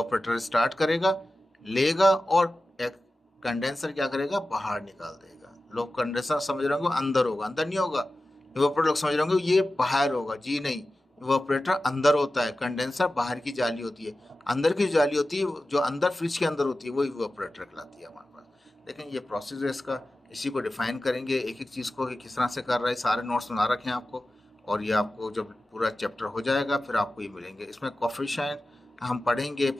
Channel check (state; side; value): normal; both; correlation 0.94